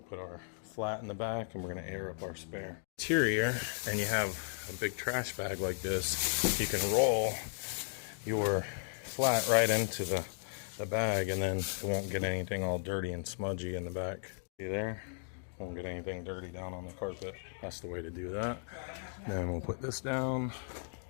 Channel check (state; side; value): silent; right; digital silence